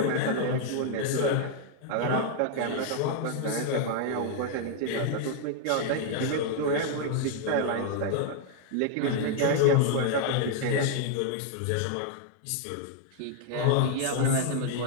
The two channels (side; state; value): both; different; correlation 0.00